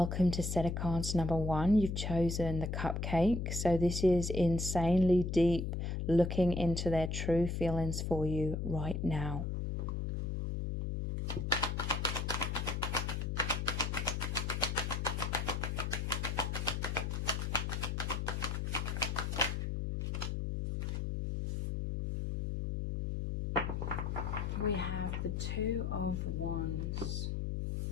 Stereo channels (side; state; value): left; noise; hum, 2 dB below the sound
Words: to set of cards number 1. You've chosen the Cupcake. So this is insanely deep, looking into their true feelings for you right now. We have the Two of Wands.